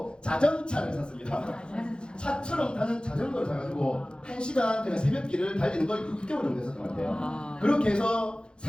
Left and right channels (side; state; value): right; late; 0.051 ms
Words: 자전차를 샀습니다. 차처럼 타는 자전거를 사가지고 1시간 그냥 새벽길을 달리는 걸 6개월 정도 했었던 것 같아요. 그렇게 해서